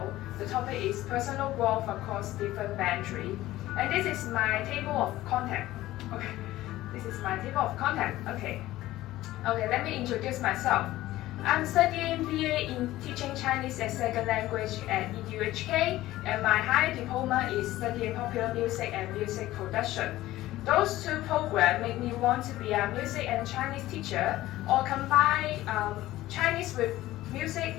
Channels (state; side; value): quieter; right; 15.9 dB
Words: The topic is personal growth across different boundaries, and this is my table of contact. Okay, this is my table of contact. Okay, let me introduce myself. I'm studying BA in Teaching Chinese as Second Language at EDUHK, and my higher diploma is studying popular music and music production. Those two programs make me want to be a music and Chinese teacher, or combine Chinese with music